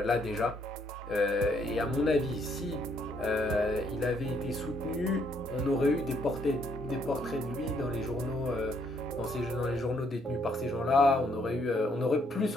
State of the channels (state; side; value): normal; both; correlation 0.70